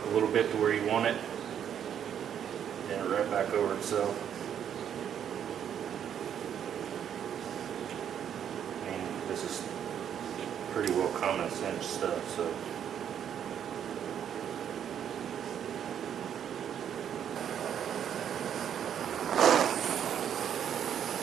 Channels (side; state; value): left; quieter; 9.1 dB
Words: a little bit to where you want it, and right back over itself. I mean, this is pretty well common sense stuff, so.